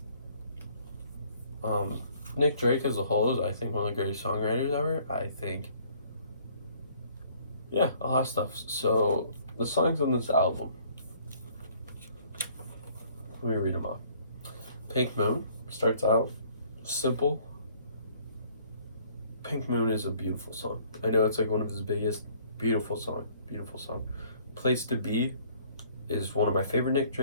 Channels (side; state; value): both; inverted; correlation -0.59